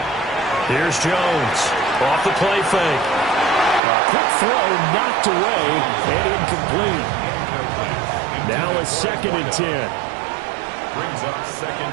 Here's Jones. Off the play fake. A quick throw knocked away and incomplete. Now a 2nd and 10. Brings up 2nd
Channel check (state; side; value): drops out; left; at 3.8 s